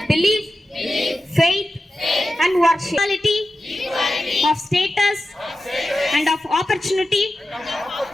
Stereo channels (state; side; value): normal; both; correlation 0.92